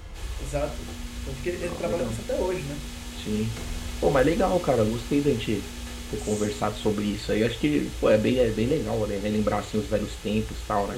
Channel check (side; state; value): both; identical; correlation 1.00